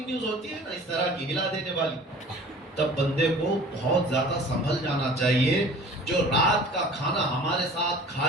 نیوز ہوتی ہے نا اس طرح کی ہلا دینے والی، تب بندے کو بہت زیادہ سنبھل جانا چاہیے۔ جو رات کا کھانا ہمارے ساتھ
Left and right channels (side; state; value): both; normal; correlation 0.46